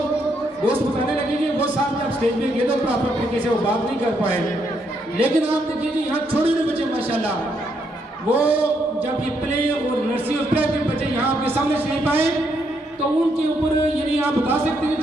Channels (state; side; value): normal; both; correlation 0.76